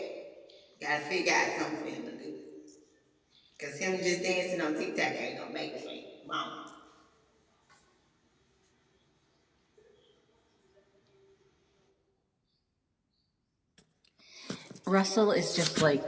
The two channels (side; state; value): both; identical; correlation 1.00